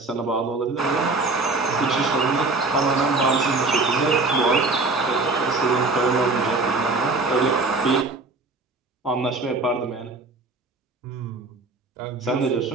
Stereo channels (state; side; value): quieter; left; 3.6 dB